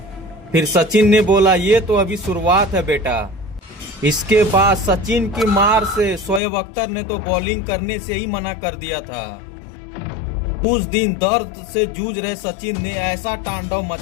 फिर सचिन ने बोला, ये तो अभी शुरुआत है बेटा। इसके बाद सचिन की मार से शोएब अख्तर ने तो बॉलिंग करने से ही मना कर दिया था। उस दिन दर्द से जूझ रहे सचिन ने ऐसा तांडव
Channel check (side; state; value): right; drops out; at 6.4 s